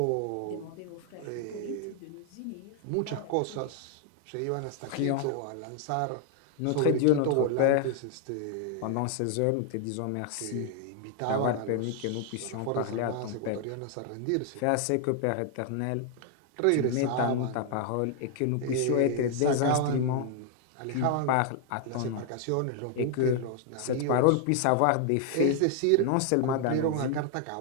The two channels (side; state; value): both; different; correlation 0.00